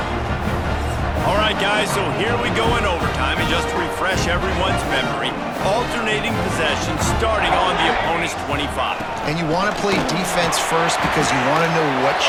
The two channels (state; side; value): identical; both; correlation 1.00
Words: All right, guys, so here we go in overtime, and just to refresh everyone's memory, alternating possession starting on the opponent's 25. And you want to play defense first because you want to know what